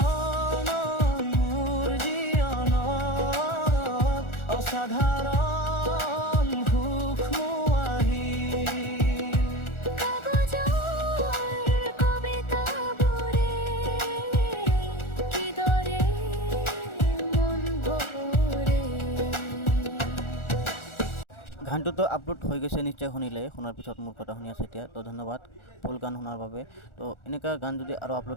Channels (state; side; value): late; right; 1.4 ms